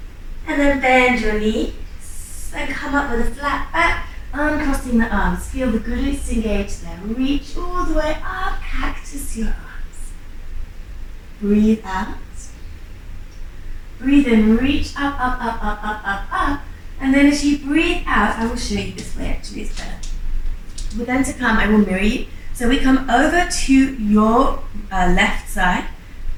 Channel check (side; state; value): both; identical; correlation 1.00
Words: And then bend your knees and come up with a flat back, uncrossing the arms. Feel the glutes engage there. Reach all the way up, cactus your arms. Breathe out. Breathe in, reach up, up, up, up, up, up, up. And then as you breathe out, I will show you this way actually, it's better. We're going to come, I will mirror you. So we come over to your left side,